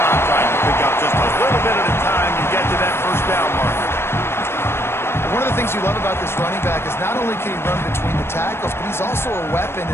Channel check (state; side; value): late; right; 0.12 ms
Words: trying to pick up just a little bit at a time to get to that first down marker. One of the things you love about this running back is not only can he run between the tackles, but he's also a weapon